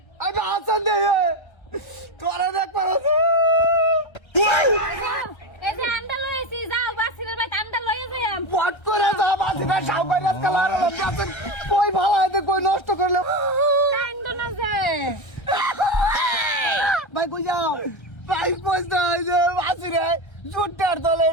আমি হাসান দে তোরা দেখ পারে এই যে আন্ডা লইছি যাও বাসিরের বাইত আন্ডা লইয়া যাইম পট করে যা বাসিটা সাউবাই রাত কালার আছে কই ভালো আছে কই নষ্ট করলে কান্দ না যে ভাই কই যাও ভাই পয়সা যে বাসিরে জুটার দলে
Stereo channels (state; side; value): late; right; 1.3 ms